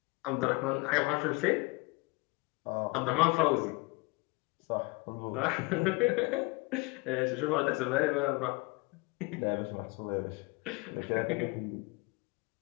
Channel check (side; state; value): right; quieter; 25.3 dB